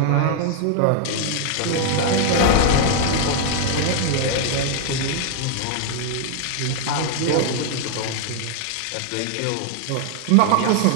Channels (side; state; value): both; different; correlation 0.00